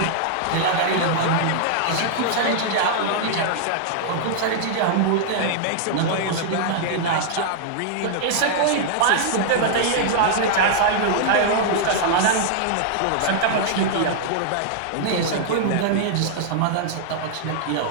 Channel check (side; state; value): both; different; correlation -0.01